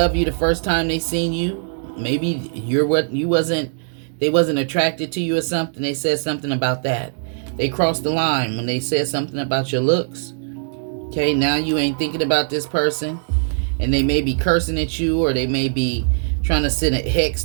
you the first time they seen you. Maybe they wasn't attracted to you or something. They said something about that. they crossed the line when they said something about your looks. Okay, now you ain't thinking about this person, and they may be cursing at you, or they may be trying to send a hex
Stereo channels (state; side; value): silent; left; digital silence